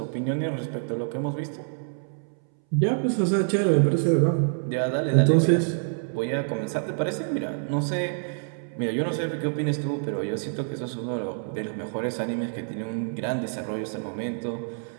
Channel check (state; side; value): silent; left; 60 dB below the other